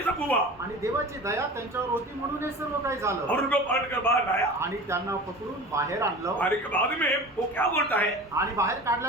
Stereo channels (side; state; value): both; normal; correlation 0.36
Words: सब हुआ। आणि देवाची दया त्यांच्यावर होती म्हणून हे सर्व काही झालं. और उनको पकड़ कर बाहर लाया। आणि त्यांना पकडून बाहेर आणलं. बाहर के बाद में वो क्या बोलता है? आणि बाहेर